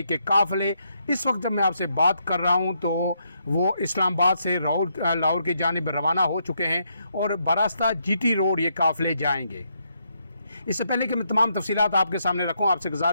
के काफ़िले इस वक्त जब मैं आपसे बात कर रहा हूं तो वो इस्लामाबाद से लाहौर की जानिब रवाना हो चुके हैं और बरास्ता जीटी रोड ये काफ़िले जाएंगे। इससे पहले कि मैं तमाम तफसीलात आपके सामने रखूं, आपसे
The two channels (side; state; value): both; inverted; correlation -0.77